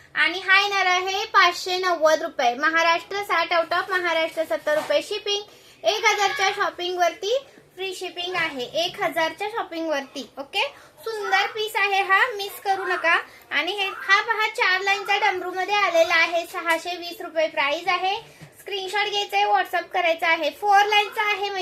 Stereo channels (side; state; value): both; identical; correlation 1.00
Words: आणि हा येणार आहे 590 रुपये। महाराष्ट्र 60 आउट ऑफ महाराष्ट्र 70 रुपये शिपिंग। 1000च्या शॉपिंग वरती फ्री शिपिंग आहे। 1000च्या शॉपिंग वरती ओके। सुंदर पीस आहे हा, मिस करू नका। आणि हा पहा 4 लाईनचा डमरू मध्ये आलेला आहे। 620 रुपये प्राइस आहे। स्क्रीनशॉट घ्यायचा आहे, व्हॉट्सअप करायचा आहे। 4 लाईनचा आहे